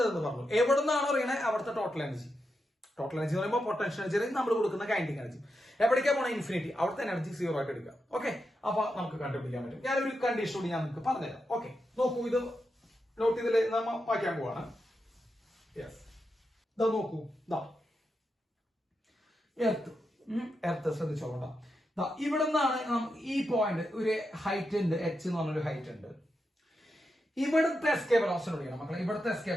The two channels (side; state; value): both; normal; correlation 0.86